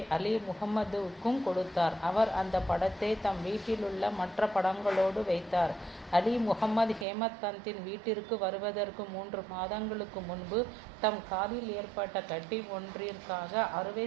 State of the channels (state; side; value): drops out; left; at 7.1 s